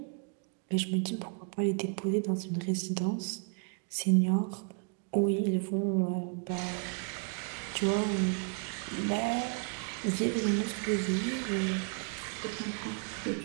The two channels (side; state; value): left; quieter; 40.0 dB